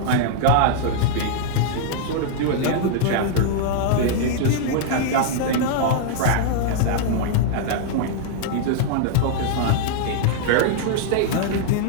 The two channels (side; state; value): both; different; correlation -0.01